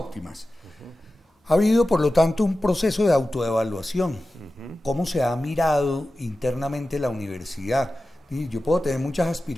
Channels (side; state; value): both; normal; correlation 0.94